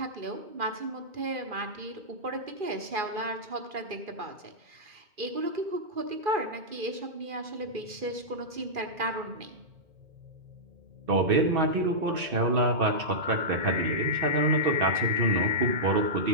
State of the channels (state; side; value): late; left; 2.4 ms